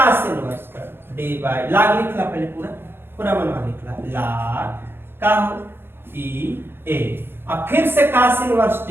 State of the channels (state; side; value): late; left; 0.11 ms